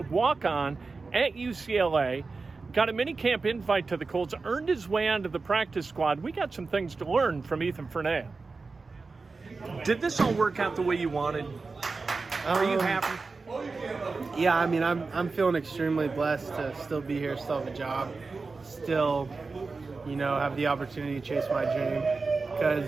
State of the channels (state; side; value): quieter; left; 4.1 dB